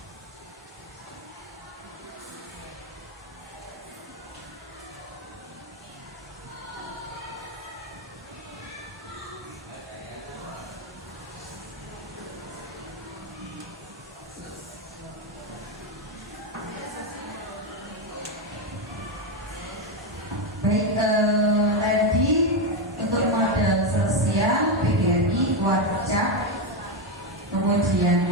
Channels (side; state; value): both; normal; correlation 0.08